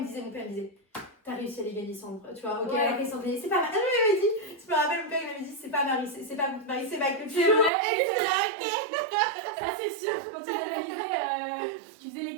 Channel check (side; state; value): left; drops out; at 7.7 s